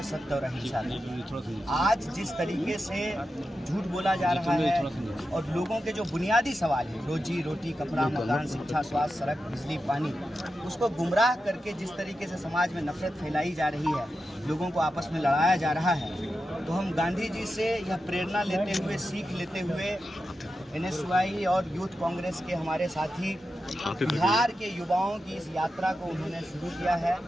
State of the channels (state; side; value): normal; both; correlation 0.90